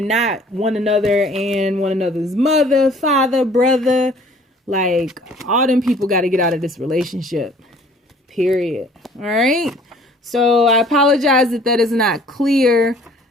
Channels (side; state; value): both; normal; correlation 0.54